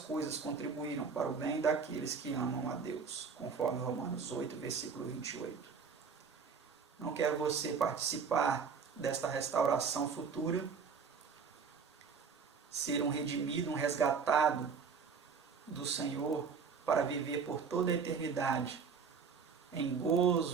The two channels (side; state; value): left; quieter; 5.8 dB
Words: contribuíram para o bem daqueles que amam a Deus, conforme Romanos 8, versículo 28. Não quer você participar desta restauração futura? Ser um redimido, um resgatado do Senhor para viver por toda a eternidade em